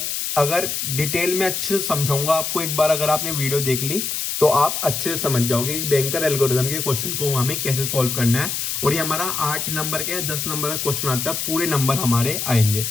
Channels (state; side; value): noise; left; hiss, 2 dB below the sound